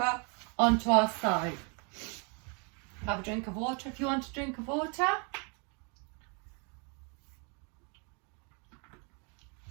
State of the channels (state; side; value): quieter; left; 35.1 dB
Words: onto our side. Have a drink of water if you want a drink of water.